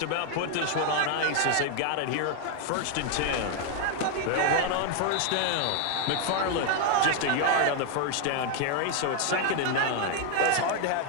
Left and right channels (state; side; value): different; both; correlation 0.00